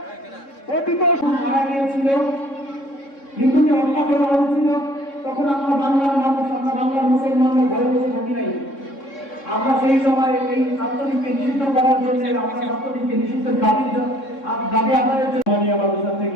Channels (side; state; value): right; late; 3.6 ms